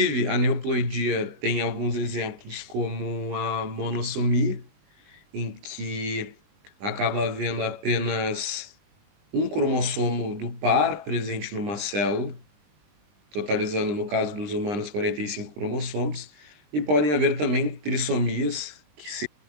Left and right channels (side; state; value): left; late; 20 ms